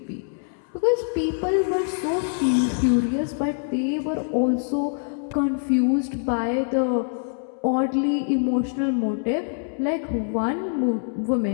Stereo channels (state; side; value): silent; right; 62 dB below the other